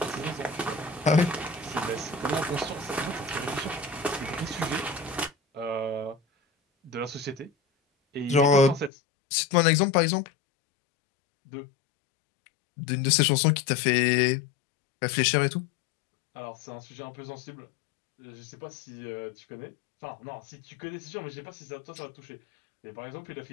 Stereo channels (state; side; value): drops out; right; at 8.9 s